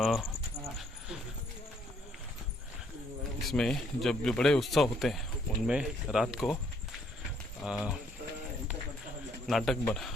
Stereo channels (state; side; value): normal; both; correlation 0.68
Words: इसमें जब जो बड़े उत्सव होते हैं उनमें रात को नाटक